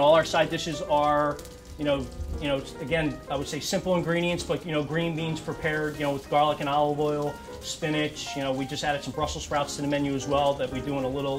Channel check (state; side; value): identical; both; correlation 1.00